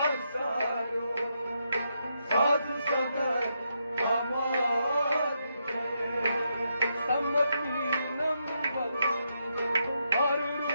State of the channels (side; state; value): both; inverted; correlation -0.81